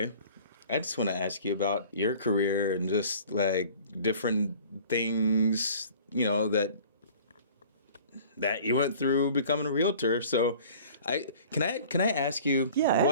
I just want to ask you about your career and just like different things, you know, that you went through becoming a realtor. So can I ask you? Yeah,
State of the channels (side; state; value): both; inverted; correlation -0.47